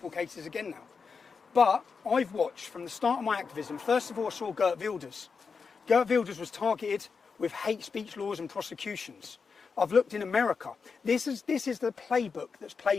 cases again now. But I've watched from the start of my activism, first of all I saw Geert Wilders. Geert Wilders was targeted with hate speech laws and prosecutions. I've looked in America. This is the playbook that's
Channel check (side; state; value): right; quieter; 5.3 dB